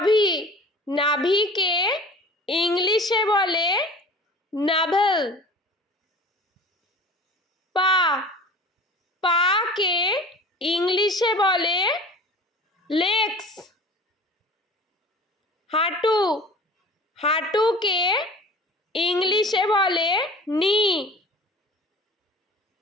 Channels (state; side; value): normal; both; correlation 0.42